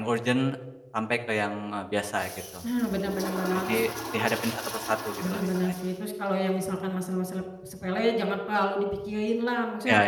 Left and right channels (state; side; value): identical; both; correlation 1.00